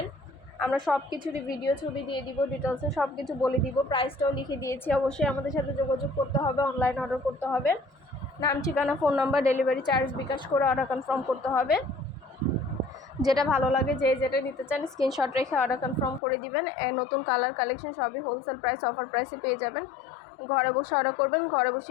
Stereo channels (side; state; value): right; drops out; at 16.2 s